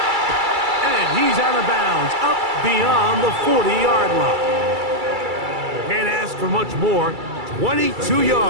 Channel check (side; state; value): left; late; 2.3 ms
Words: And he's out of bounds, up beyond the 40-yard line. Can't ask for much more. 22